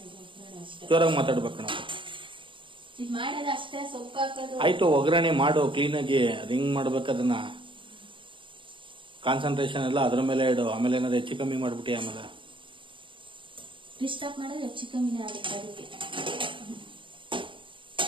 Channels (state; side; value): late; left; 0.24 ms